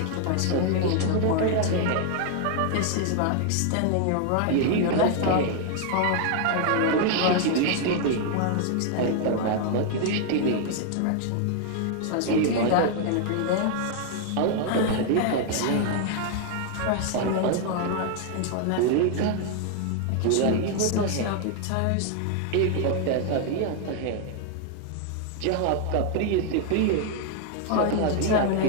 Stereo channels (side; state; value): both; different; correlation 0.00